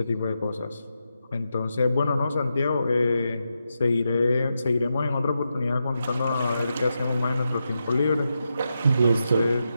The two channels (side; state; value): both; inverted; correlation -0.87